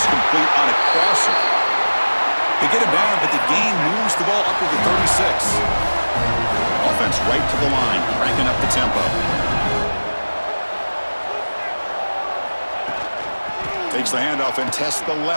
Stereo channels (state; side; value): inverted; both; correlation -1.00